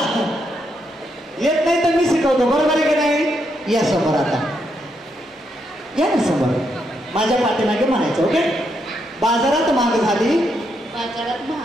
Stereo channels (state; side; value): normal; both; correlation 0.79